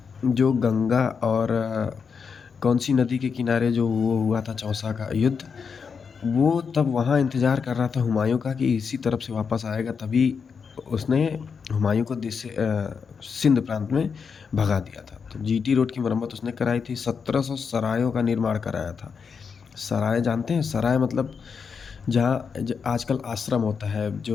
जो गंगा और कौन सी नदी के किनारे जो वो हुआ था चौसा का युद्ध, वो तब वहाँ इंतज़ार कर रहा था हुमायूं का कि इसी तरफ से वापस आएगा, तभी उसने हुमायूं को सिंध प्रांत में भगा दिया था। तो जीटी रोड की मरम्मत उसने कराई थी। 1700 सरायों का निर्माण कराया था। सराय जानते हैं? सराय मतलब जहाँ आजकल आश्रम होता है,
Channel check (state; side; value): quieter; right; 5.9 dB